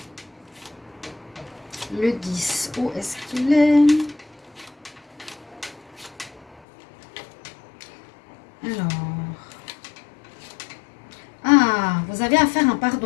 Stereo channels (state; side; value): drops out; right; at 6.6 s